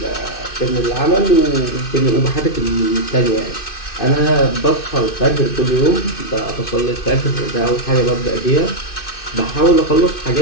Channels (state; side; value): late; right; 2.5 ms